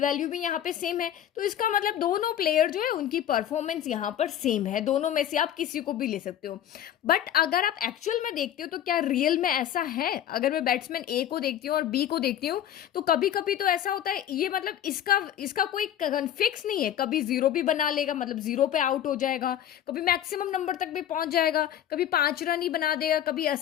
वैल्यू भी यहाँ पे सेम है। तो इसका मतलब दोनों प्लेयर जो है उनकी परफॉर्मेंस यहाँ पर सेम है, दोनों में से आप किसी को भी ले सकते हो। बट अगर आप एक्चुअल में देखते हो तो क्या रियल में ऐसा है? अगर मैं बैट्समैन ए को देखती हूँ और बी को देखती हूँ, तो कभी कभी तो ऐसा होता है, ये मतलब इसका कोई फिक्स नहीं है, कभी 0 भी बना लेगा, मतलब 0 पे आउट हो जाएगा, कभी मैक्सिमम नंबर तक भी पहुंच जाएगा, कभी 5 रन ही बना देगा, कभी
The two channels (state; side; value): quieter; right; 10.8 dB